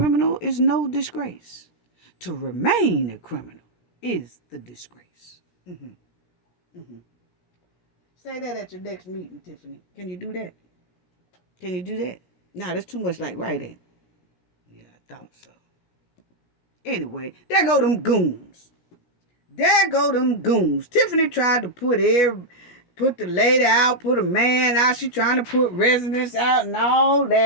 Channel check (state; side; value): late; right; 17 ms